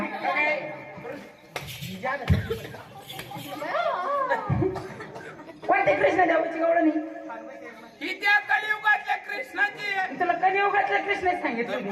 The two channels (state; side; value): identical; both; correlation 1.00